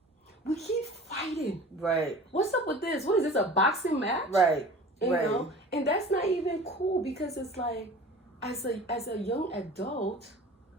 we keep fighting. Right. What's up with this? What is this, a boxing match? Right. You know? And that's not even cool because it's like, as a young adult,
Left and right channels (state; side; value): normal; both; correlation 0.41